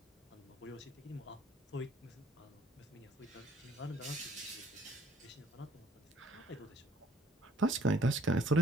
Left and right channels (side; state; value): both; normal; correlation 0.61